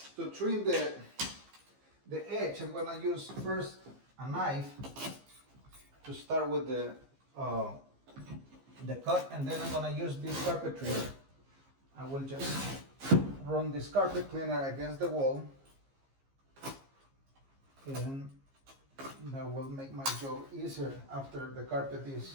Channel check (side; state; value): left; late; 15 ms